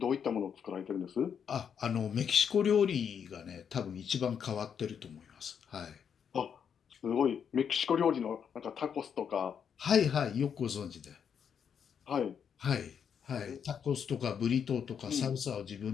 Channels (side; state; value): right; quieter; 7.6 dB